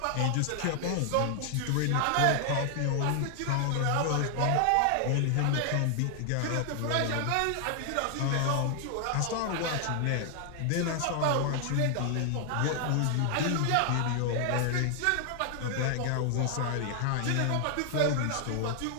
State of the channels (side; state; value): both; different; correlation 0.00